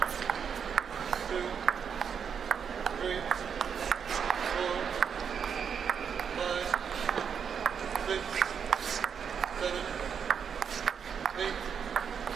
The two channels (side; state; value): left; quieter; 7.1 dB